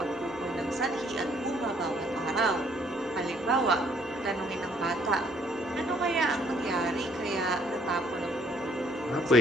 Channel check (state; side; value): normal; both; correlation 0.64